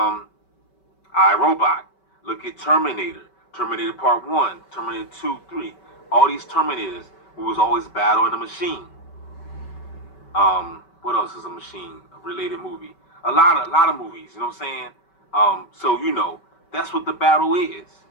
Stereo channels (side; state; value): right; late; 5.2 ms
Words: Robot. Look at Terminator. Terminator Part 1, Terminator 2, 3. All these Terminators, we was always battling the machine. What else is a machine-related movie? A lot of movies, you know what I'm saying? So that's what the battle is.